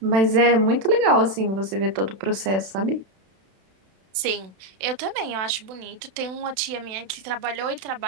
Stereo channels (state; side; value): late; left; 32 ms